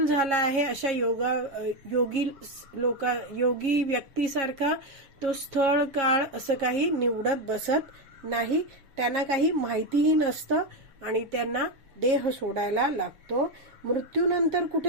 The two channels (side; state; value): left; late; 7.3 ms